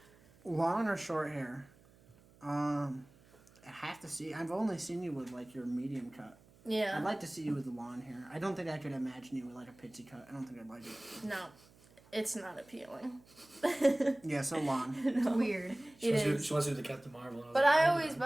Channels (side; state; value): right; noise; hum, 27 dB below the sound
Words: Long or short hair? I have to see. I've only seen you with like your medium cut. Yeah. I'd like to see you with the long hair. I don't think I could imagine you with like a pixie cut. I don't think I'd like it. No. It's not appealing. Yeah, so long. No. Weird. She It wants, is. she wants to do the Captain Marvel. and But was I